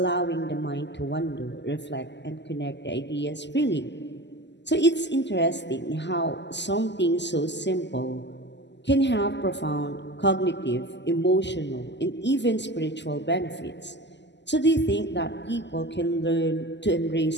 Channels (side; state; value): right; late; 0.51 ms